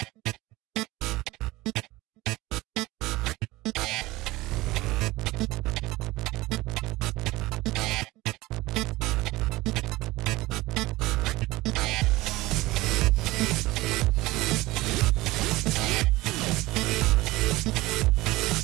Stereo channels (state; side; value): quieter; left; 19.5 dB